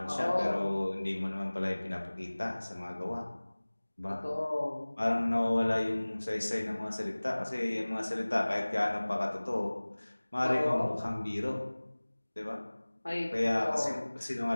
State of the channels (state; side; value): inverted; both; correlation -1.00